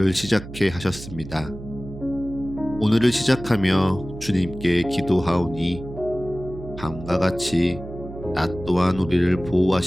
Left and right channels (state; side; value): noise; right; hum, 13 dB below the sound